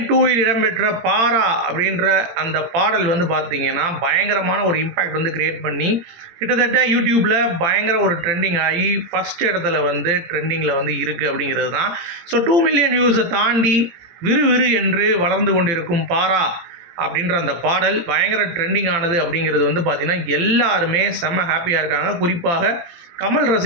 2ல் இடம்பெற்ற பாரா அப்படின்ற அந்த பாடல் வந்து பார்த்திங்கன்னா பயங்கரமான ஒரு இம்பேக்ட் வந்து கிரியேட் பண்ணி கிட்டத்தட்ட யூடியூப்பில் பயங்கர ஒரு ட்ரெண்டிங் ஆகி ஃபஸ்ட் இடத்துல வந்து ட்ரெண்டிங்கில் வந்து இருக்குது அப்படிங்கிறது தான். ஸோ 2 மில்லியன் வியூஸை தாண்டி விறுவிறு என்று வளர்ந்து கொண்டிருக்கும் பாரா அப்படின்ற அந்த பாடல் பயங்கர ட்ரெண்டிங் ஆனது அப்படிங்கிறது வந்து பார்த்திங்கன்னா எல்லாருமே செம்ம ஹாப்பியாக இருக்காங்க. குறிப்பாக கமல்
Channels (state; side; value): late; left; 18 ms